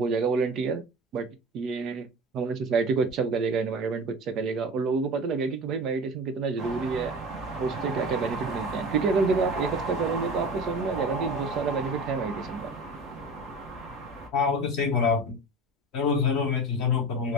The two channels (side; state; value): both; normal; correlation 0.34